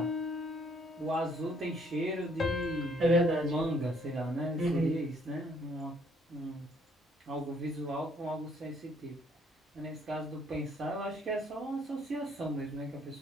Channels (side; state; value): both; normal; correlation 0.65